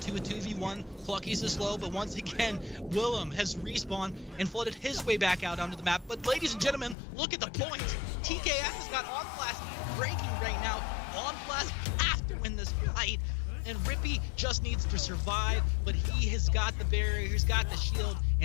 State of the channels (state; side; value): drops out; right; at 7.0 s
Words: a 2v1. Clucky's is slow, but once again, Willem has respawned and flooded his way back out onto the map. But ladies and gentlemen, look at the points. TKS has got On Flash breaking right now. On Flash has to win this fight, and Rippy just needs to survive, but he has got the barrier, he's got the shield,